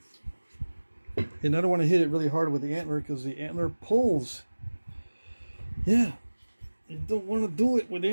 And I don't want to hit it really hard with the antler because the antler pulls. Yeah, you don't want to do it with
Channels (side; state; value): both; inverted; correlation -1.00